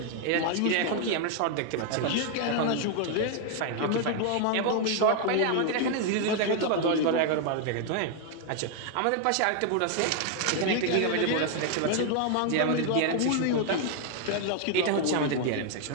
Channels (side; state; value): both; different; correlation 0.00